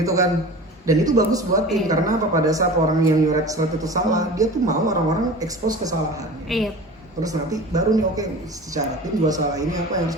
kan. Dan itu bagus buat tim karena apa, pada saat orang yang nyoret seret itu salah, dia tuh mau orang-orang expose kesalahannya. Iya. Terus nanti baru nih oke, secara tim gua salah ini apa yang harus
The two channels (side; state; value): both; normal; correlation 0.36